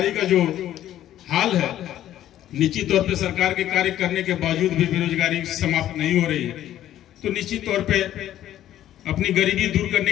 का जो हाल है, निश्चित तौर पे सरकार के कार्य करने के बावजूद भी बेरोजगारी समाप्त नहीं हो रही है। तो निश्चित तौर पे अपनी गरीबी दूर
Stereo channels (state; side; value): quieter; right; 12.3 dB